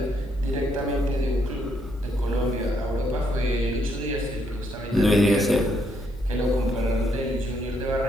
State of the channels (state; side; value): normal; both; correlation 0.74